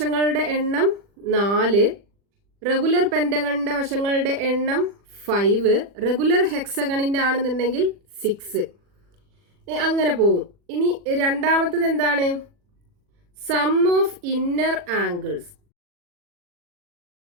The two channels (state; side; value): late; left; 40 ms